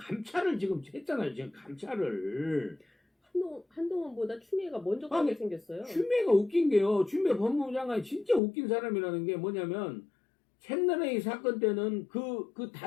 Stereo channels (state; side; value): drops out; right; at 8.4 s